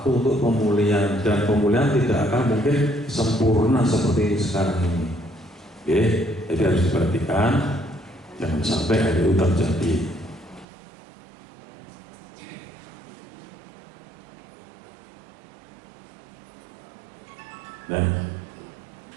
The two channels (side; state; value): left; drops out; at 10.7 s